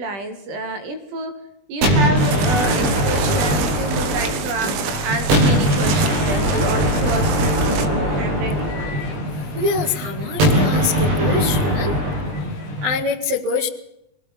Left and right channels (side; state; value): left; late; 20 ms